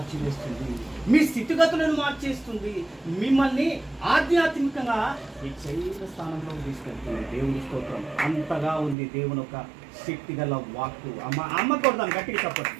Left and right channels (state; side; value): drops out; left; at 9.0 s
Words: మీ స్థితిగతులను మార్చేస్తుంది, మిమ్మల్ని ఆధ్యాత్మికంగా హెచ్చైన స్థానంలో తీసుకెళ్తుంది. దేవుని స్తోత్రం. అంతగా ఉంది దేవుని ఒక శక్తి గల వాక్కు. అమ్మ కొడదాను గట్టిగా చెప్పండి.